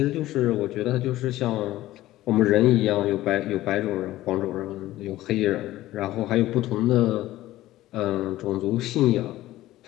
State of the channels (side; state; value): right; quieter; 15.7 dB